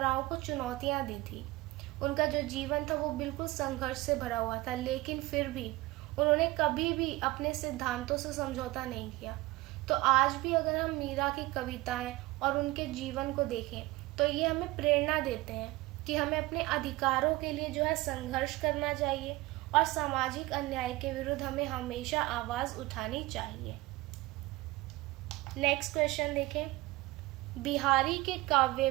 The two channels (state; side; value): quieter; left; 19.9 dB